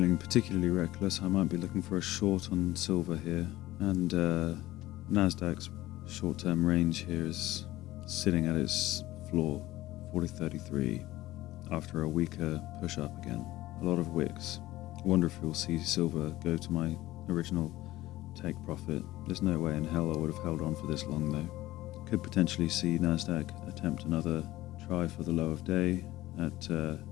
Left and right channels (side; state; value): right; quieter; 16.7 dB